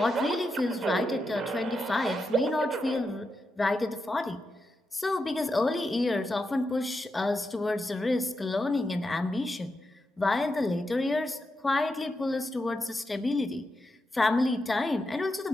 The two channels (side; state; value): both; normal; correlation 0.87